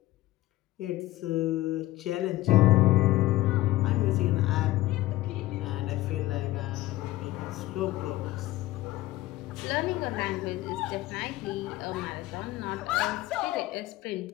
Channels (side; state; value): right; quieter; 16.9 dB